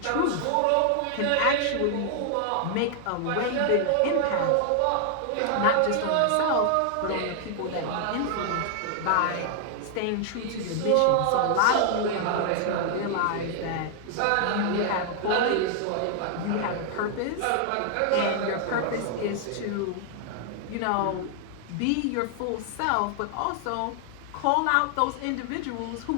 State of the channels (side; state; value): both; different; correlation 0.00